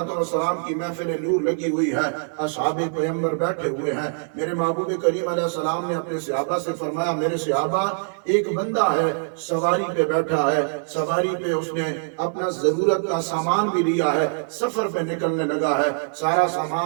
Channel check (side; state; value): left; silent; digital silence